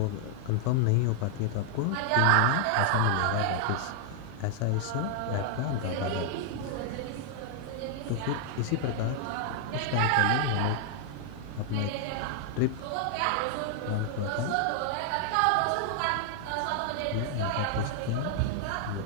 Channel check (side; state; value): both; different; correlation 0.00